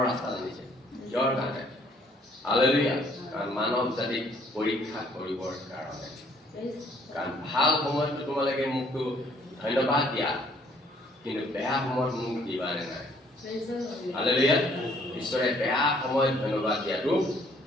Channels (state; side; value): normal; both; correlation 0.63